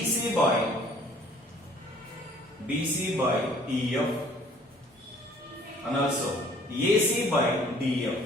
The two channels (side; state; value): both; normal; correlation 0.55